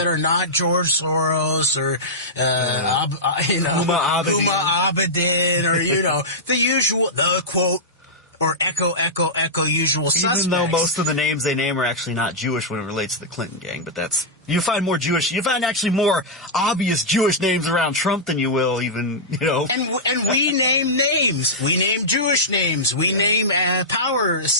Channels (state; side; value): normal; both; correlation -0.10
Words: are not George Soros or, Huma Abedin or, the usual, the quote, or echo usual suspects. Even though most of the names they name are actually not Jewish when it relates to the Clinton gang, but you find actually more obvious Jewish names around Trump than you will even, And we name names. We name Jewish names. We name power